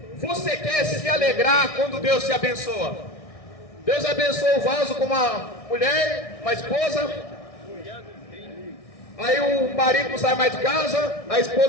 você quer se alegrar quando Deus te abençoa? Deus abençoa o vaso com uma mulher, uma esposa. Aí o marido não sai mais de casa, a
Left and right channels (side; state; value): right; late; 1.6 ms